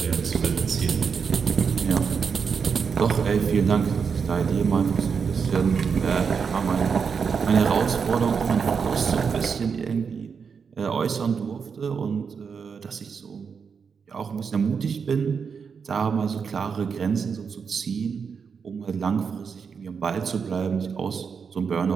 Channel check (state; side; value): quieter; left; 6.1 dB